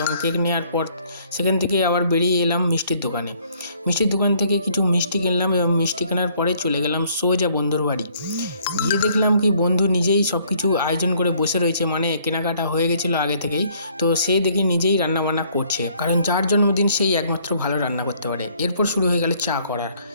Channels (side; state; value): both; inverted; correlation -0.63